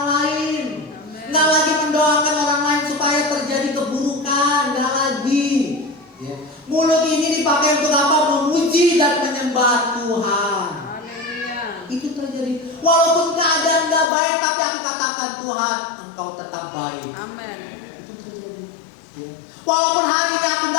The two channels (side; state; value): right; drops out; at 14.1 s